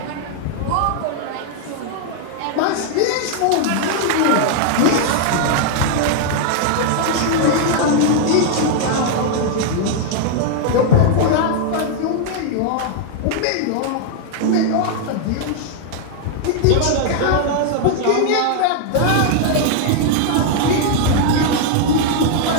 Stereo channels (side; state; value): both; different; correlation 0.00